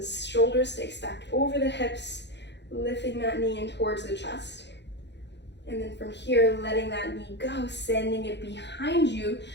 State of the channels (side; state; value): right; late; 0.51 ms